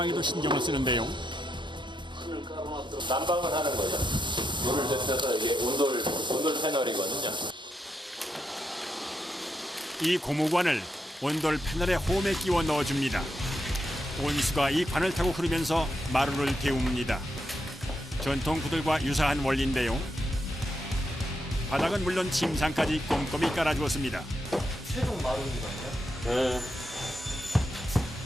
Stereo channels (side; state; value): both; normal; correlation 0.82